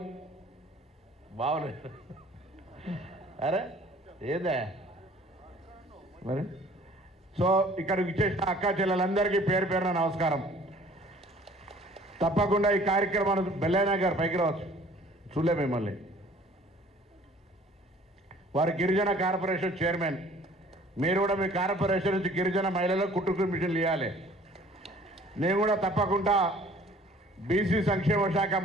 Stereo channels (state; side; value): normal; both; correlation 0.52